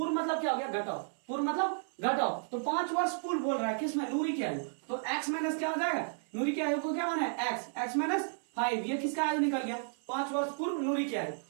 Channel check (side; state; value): left; silent; 56 dB below the other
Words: मतलब क्या हो गया, घटाओ, पूर्व मतलब घटाओ। तो 5 वर्ष पूर्व बोल रहा है किसमें, नूरी की आयु। तो एक्स माइनस क्या हो जाएगा, नूरी की आयु को क्या माने, एक्स, एक्स माइनस 5। ये किसका आयु निकल गया, 5 वर्ष पूर्व नूरी की आयु।